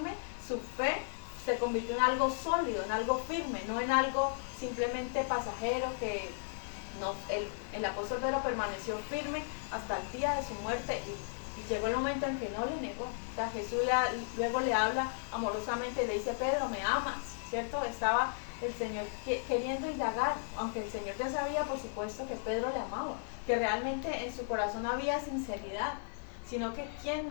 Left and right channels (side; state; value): right; silent; digital silence